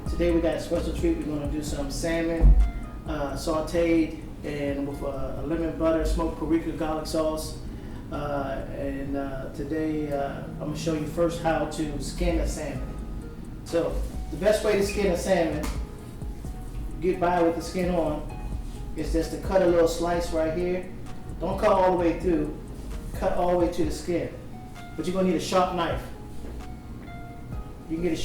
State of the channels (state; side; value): identical; both; correlation 1.00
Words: Today we got a special treat. We're going to do some salmon sauteed and with a lemon butter smoked paprika garlic sauce. Today I'm going to show you first how to skin a salmon. So the best way to skin a salmon, get by with the skin on, is just to cut a little slice right here. Don't cut all the way through. Cut all the way to the skin. But you're going to need a sharp knife. You can get a